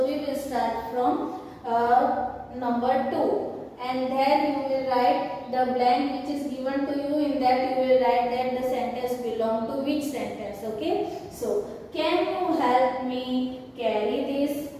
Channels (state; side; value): identical; both; correlation 1.00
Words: we will start from number 2. And there you will write the blank which is given to you. In that you will write that the sentence belong to which sentence. Okay. So can you help me carry this